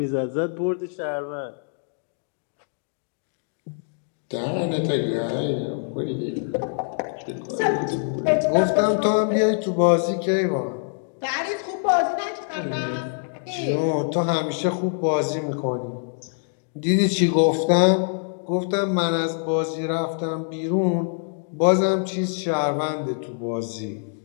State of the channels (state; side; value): silent; right; 62 dB below the other